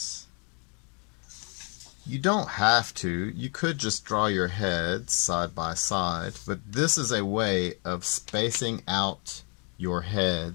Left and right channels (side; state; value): right; quieter; 35.7 dB